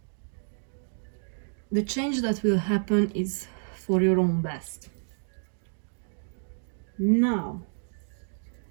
the change that will happen is for your own best. Now,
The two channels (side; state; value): left; silent; 58 dB below the other